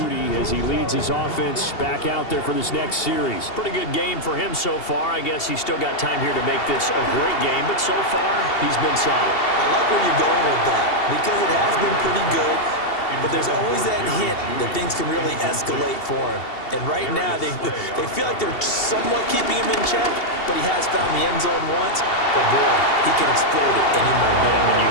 as he leads his offense back out there for this next series. Pretty good game for him so far. I guess he's still got time here to make this a great game, but so far he's been solid. I like where you're going with that because it has been pretty good, but there's always that hint that things can really escalate for him. And right now they feel like they're somewhat keeping him in check, but he has found the end zone once. But boy, he can explode it any moment. And when you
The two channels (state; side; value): late; right; 2.7 ms